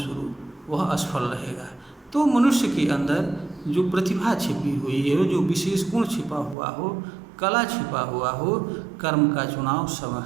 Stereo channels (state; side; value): drops out; left; at 6.6 s